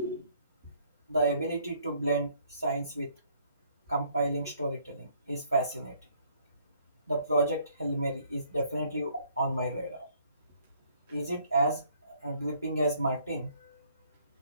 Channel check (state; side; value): inverted; both; correlation -0.63